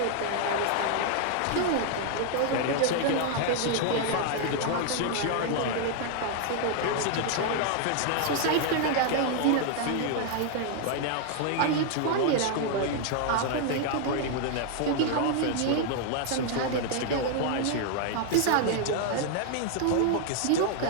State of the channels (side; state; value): both; different; correlation 0.00